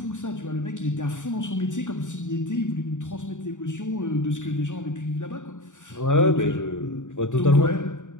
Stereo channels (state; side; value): late; right; 0.86 ms